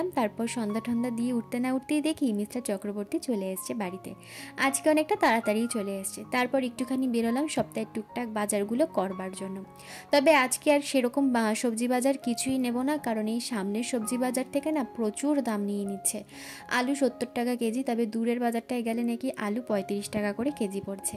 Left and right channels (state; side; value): identical; both; correlation 1.00